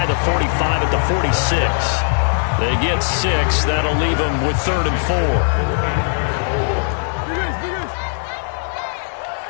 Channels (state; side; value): silent; right; digital silence